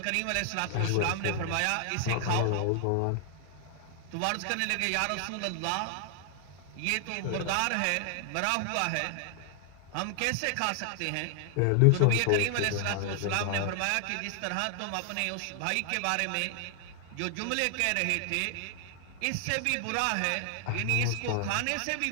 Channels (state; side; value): different; both; correlation 0.00